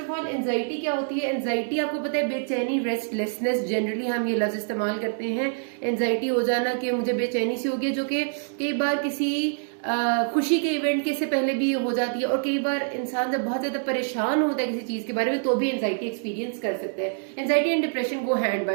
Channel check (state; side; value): silent; left; digital silence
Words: all anxiety क्या होती है? एंजाइटी आपको पता है बेचैनी, रेस्टलेसनेस, जनरली हम ये लफ्ज इस्तेमाल करते हैं। एंजाइटी हो जाना कि मुझे बेचैनी सी होगी, जो कि कई बार किसी खुशी के इवेंट के से पहले भी हो जाती है, और कई बार इंसान जब बहुत ज्यादा परेशान होता है किसी चीज के बारे में तो भी एंजाइटी एक्सपीरियंस कर सकते हैं। Anxiety and depression go hand